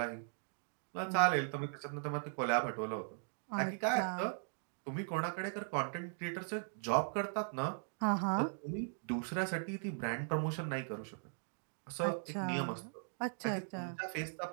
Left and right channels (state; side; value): silent; left; digital silence